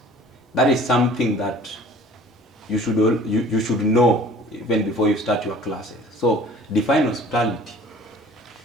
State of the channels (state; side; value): normal; both; correlation 0.49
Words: that is something that you should know even before you start your classes. So define hospitality.